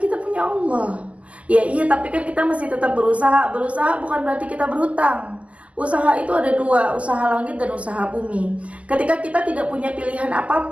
punya Allah. Ya iya, tapi kan kita masih tetap berusaha. Berusaha bukan berarti kita berhutang. Usaha itu ada dua, usaha langit dan usaha bumi. Ketika kita tidak punya pilihan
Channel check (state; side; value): late; left; 0.066 ms